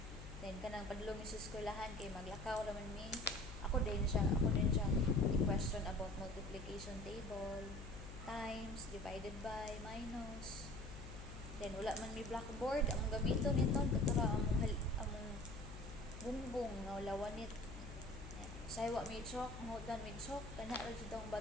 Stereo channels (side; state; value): left; noise; hum, 11 dB below the sound